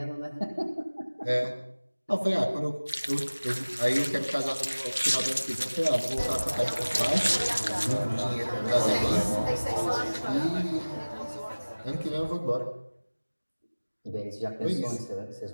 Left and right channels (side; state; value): both; inverted; correlation -1.00